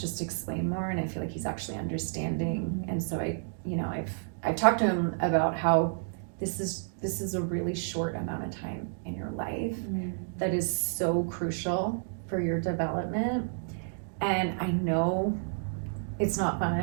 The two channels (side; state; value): left; silent; digital silence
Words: explain more and I feel like he's actually understanding. And so I've talked to him about how this is a really short amount of time in your life that is so crucial for your development. And I know it's not